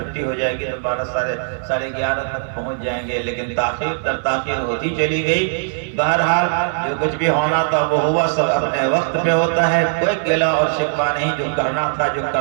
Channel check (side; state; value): left; silent; 62 dB below the other